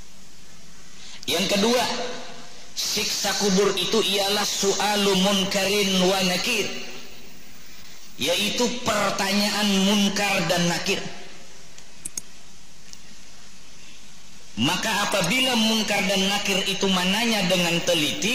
Yang kedua, siksa kubur itu ialah su'alu munkarin wa nakir, yaitu pertanyaan munkar dan nakir. Maka apabila munkar dan nakir itu menanya dengan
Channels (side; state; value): both; identical; correlation 1.00